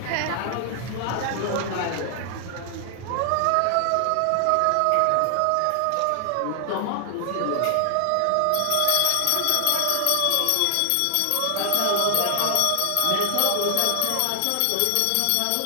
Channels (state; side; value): different; both; correlation 0.00